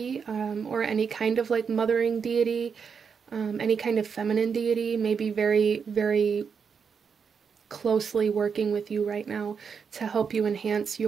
or any kind of like mothering deity, any kind of feminine deity, may be very, very closely working with you right now to help you enhance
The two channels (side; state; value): left; quieter; 6.2 dB